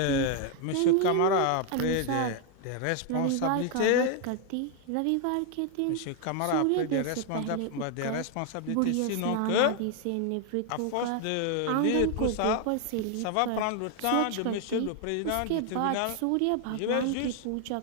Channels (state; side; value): different; both; correlation 0.01